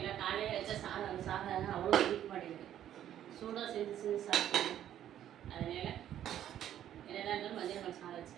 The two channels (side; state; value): left; quieter; 11.1 dB